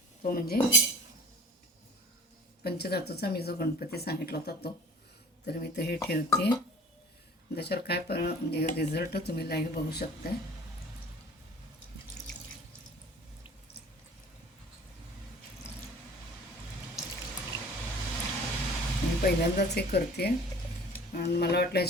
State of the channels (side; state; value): both; normal; correlation 0.46